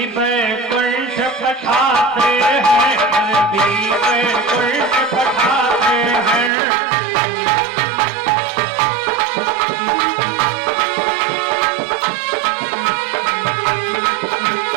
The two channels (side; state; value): left; drops out; at 6.5 s